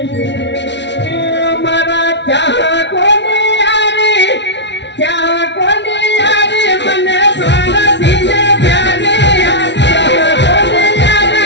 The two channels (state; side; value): late; right; 0.51 ms